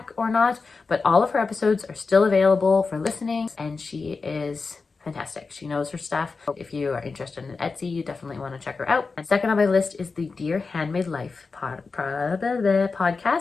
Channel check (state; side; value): quieter; right; 4.4 dB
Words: or not, but all of her episodes are still available for listening, and she is fantastic. She knows her stuff. If you are interested in Etsy, you definitely want to check her out. And second on my list is the Dear Handmade Life